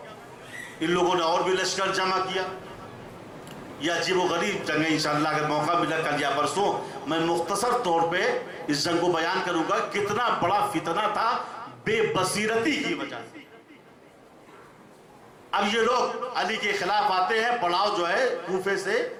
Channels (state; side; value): identical; both; correlation 1.00